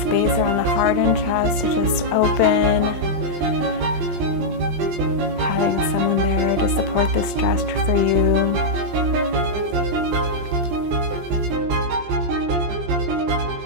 space around the heart and chest to just open. Having someone there to support this stretch for you.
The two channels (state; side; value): late; left; 20 ms